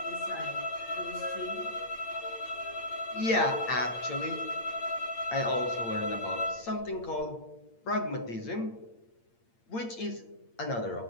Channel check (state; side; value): late; right; 8.7 ms